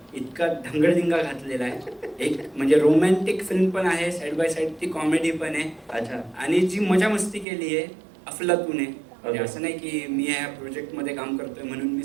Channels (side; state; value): left; drops out; at 7.5 s